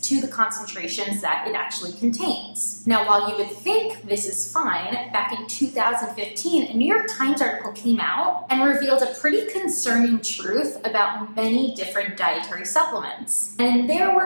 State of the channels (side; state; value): both; inverted; correlation -1.00